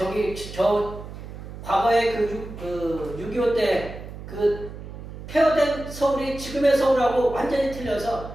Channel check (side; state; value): right; noise; hum, 12 dB below the sound